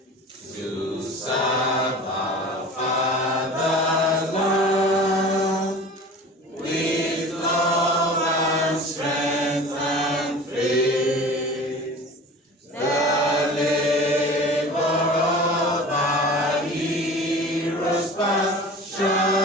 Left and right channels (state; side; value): normal; both; correlation 0.39